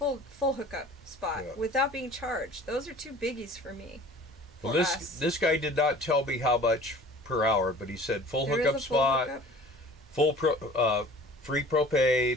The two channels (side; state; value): both; normal; correlation 0.46